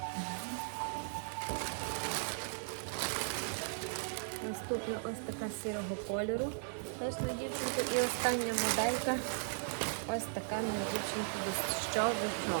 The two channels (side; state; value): left; silent; digital silence